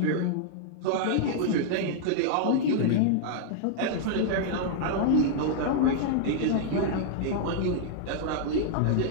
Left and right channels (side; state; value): both; different; correlation -0.01